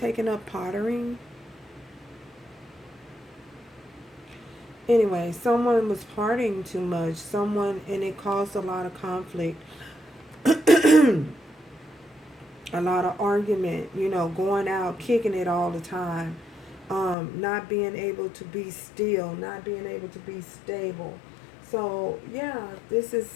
up pottering? Anyway, someone was partying too much. And it caused a lot of conflict. A lot of argument, you know, going out, kicking it all the time. Not being able to be still, not being able to be stable. So, yeah, this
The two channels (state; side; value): drops out; right; at 17.2 s